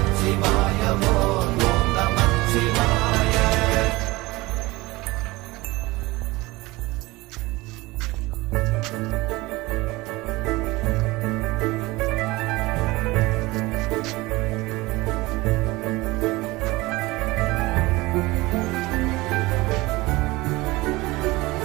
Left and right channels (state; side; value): quieter; left; 21.2 dB